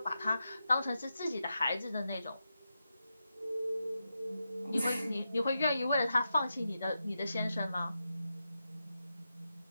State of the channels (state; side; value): inverted; both; correlation -0.88